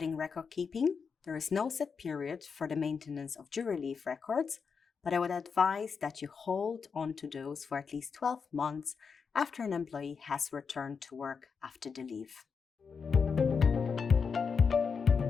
record keeping, there is no set period for the maintenance of jury leave records, but I would advise that you hold on to those for at least 12 months after an employee has returned to work after the leave.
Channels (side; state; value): right; quieter; 5.7 dB